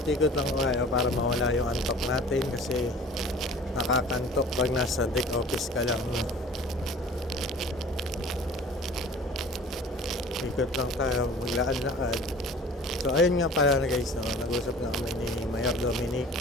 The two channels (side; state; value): both; normal; correlation 0.45